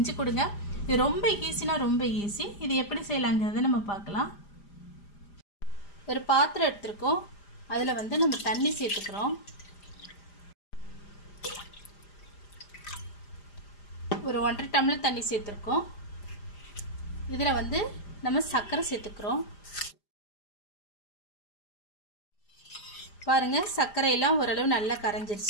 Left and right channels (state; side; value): late; right; 5.0 ms